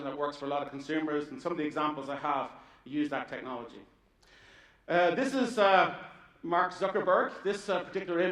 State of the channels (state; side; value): identical; both; correlation 1.00